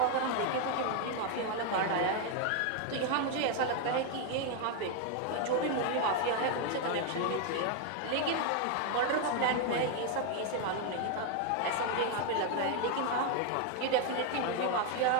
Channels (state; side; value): different; both; correlation 0.01